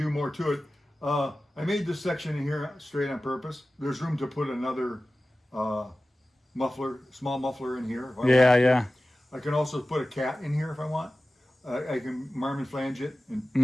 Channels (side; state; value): both; normal; correlation 0.96